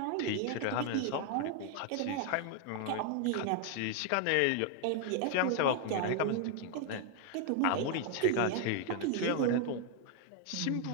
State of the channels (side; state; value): both; different; correlation 0.01